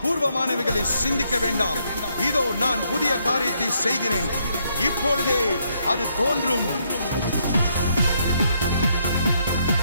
பூர்வமானவைகளை சிந்திக்க வேண்டாம். இதோ நான் புதிய காரியத்தை செய்கிறேன், இப்பொழுதே அது தோன்றும்.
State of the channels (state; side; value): inverted; both; correlation -0.74